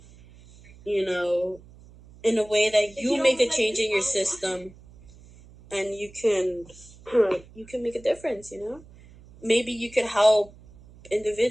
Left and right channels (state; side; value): noise; right; hum, 23 dB below the sound